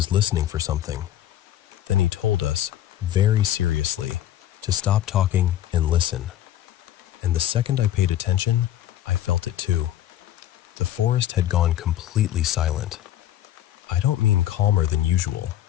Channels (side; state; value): right; quieter; 12.5 dB